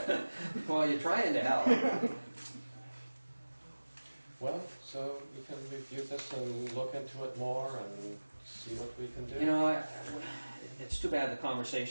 Well, you're trying to help. Well, so we can review this and look into it more and see what we can do. You know, it's too bad the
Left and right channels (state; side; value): inverted; both; correlation -1.00